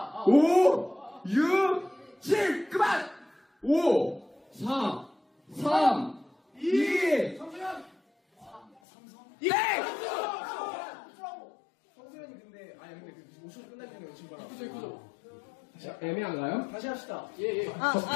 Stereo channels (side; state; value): right; drops out; at 8.7 s